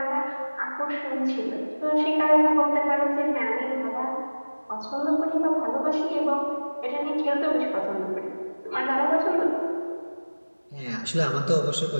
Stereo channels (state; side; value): inverted; both; correlation -1.00